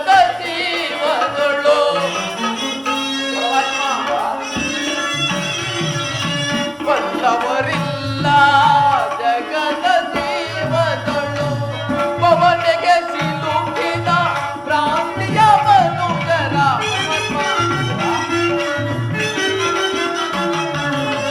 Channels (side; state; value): both; identical; correlation 1.00